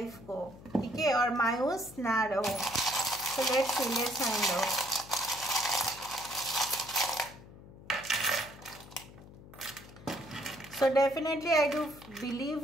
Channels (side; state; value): left; noise; hum, 18 dB below the sound